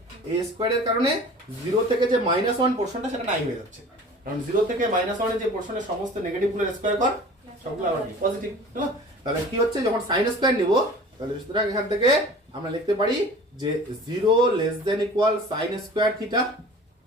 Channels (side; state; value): both; normal; correlation 0.42